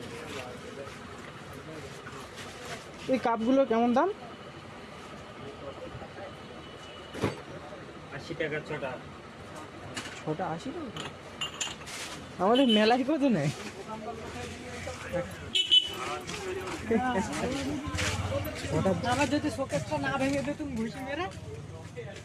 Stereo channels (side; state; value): both; identical; correlation 1.00